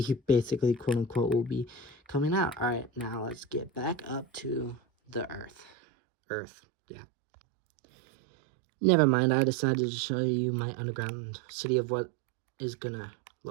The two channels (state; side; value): drops out; left; at 5.7 s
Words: basically, quote unquote, will be coming out. All right, now let's get back up to the earth. Yeah, never mind, I decided to show you my underground city of what is gonna